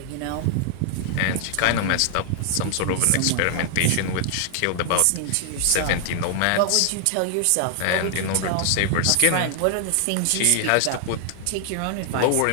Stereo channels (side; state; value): both; different; correlation 0.00